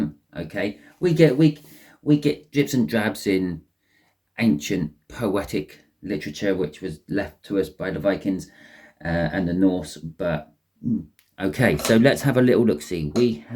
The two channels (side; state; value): both; identical; correlation 1.00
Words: Okay, we get drips and drabs in ancient poetic literature, which was left to us by the Vikings and the Norse. But okay, so let's have a little look. See, we